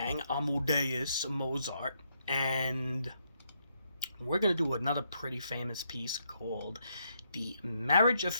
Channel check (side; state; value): both; inverted; correlation -0.77